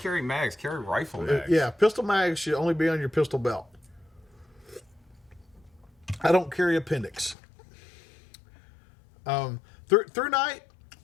carry mags, carry rifle mags. Yeah, pistol mags should only be on your pistol belt. I don't carry appendix. Through night,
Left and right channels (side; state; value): right; drops out; at 7.4 s